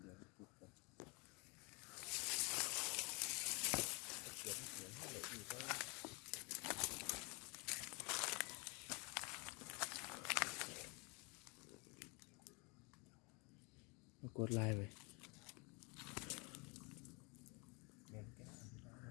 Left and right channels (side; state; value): right; quieter; 30.5 dB